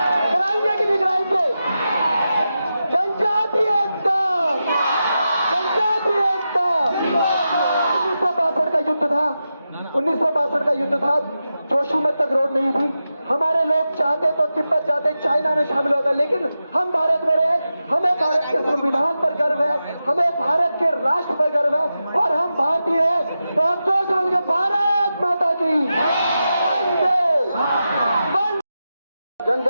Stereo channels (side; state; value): both; inverted; correlation -0.90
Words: कि नहीं कराएंगे? जनजाति एकता 1962 का युद्ध था, जोशीमठ तक रोड नहीं थी। हमारे लोग चाहते तो तिब्बत जाते, चाइना में शामिल होता, लेकिन हम भारत में रहे। हमें भारत के संविधान पर गर्व है, हमें भारत के राष्ट्र पर गर्व है, और हम भारतीय हैं। तो हम जोश होंगे, भारत माता की वंदे।